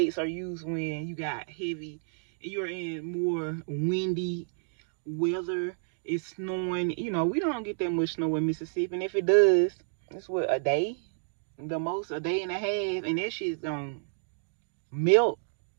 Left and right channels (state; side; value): silent; left; digital silence